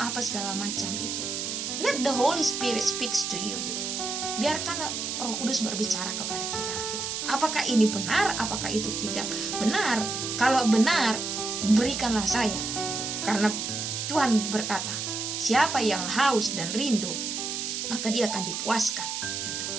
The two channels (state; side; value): noise; right; hiss, 3 dB below the sound